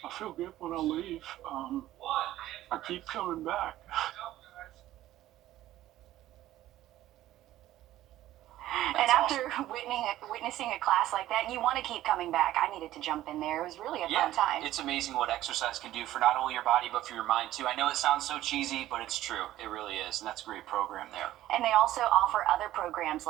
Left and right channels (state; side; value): quieter; left; 14.3 dB